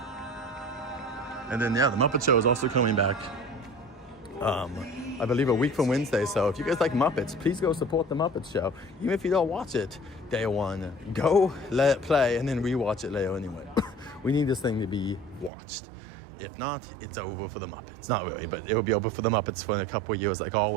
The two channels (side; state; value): left; drops out; at 15.5 s